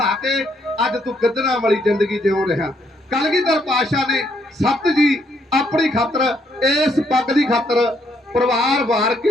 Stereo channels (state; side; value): normal; both; correlation 0.72